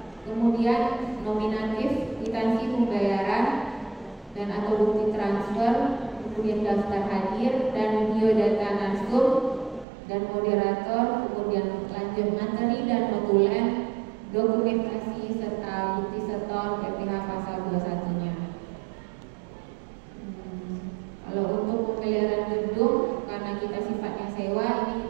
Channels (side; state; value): left; drops out; at 9.9 s